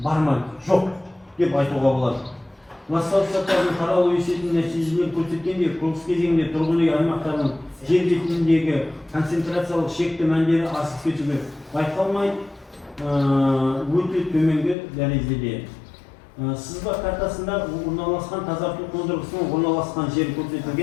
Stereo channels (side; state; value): right; drops out; at 14.8 s